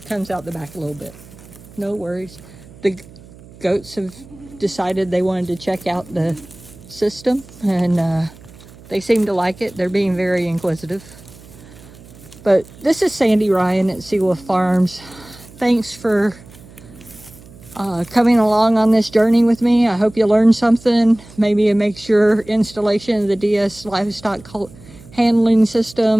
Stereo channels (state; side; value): noise; right; hum, 21 dB below the sound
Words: comes out the back a little bit. No worries. The goats have decided they wanted to check out the system, and they seem to like it. They're being very inquisitive. But this is Sandy Ryan at SeeWolf Farms. Thanks for coming along on this journey with me. I hope you learned something. Maybe it makes your installation of the D-S Livestock handling